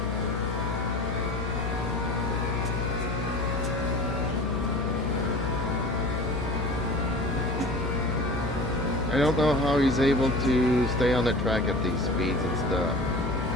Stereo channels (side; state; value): left; noise; hum, 3 dB below the sound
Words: I don't know how he's able to stay on the track at these speeds and stuff.